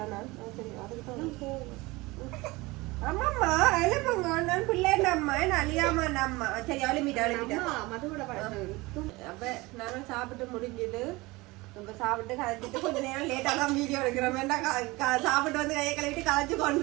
நான் சரி அதுக்கு ஆமாம்மா எழுப்புங்க, நான் பிள்ளை நம்ம அழியாம நம்ம சரி அழுமிட்டா அப்ப நானும் சாப்பிட்டு முடிஞ்சது. நம்ம சாப்பிட்டு கலைச்சிட்டு கொஞ்ச நேரம் லேட்டா தான் வீடியோ எடுக்கிறோம், சாப்பிட்டு வந்து கையை கழுவிட்டு கலைச்சு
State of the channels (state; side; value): quieter; left; 22.2 dB